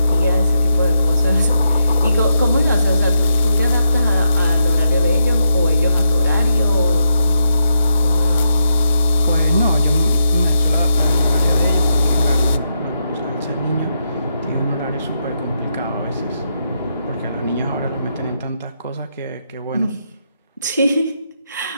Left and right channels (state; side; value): inverted; both; correlation -0.83